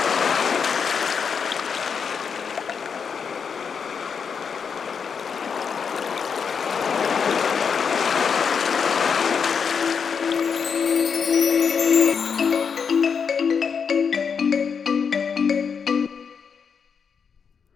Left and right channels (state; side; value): quieter; right; 6.3 dB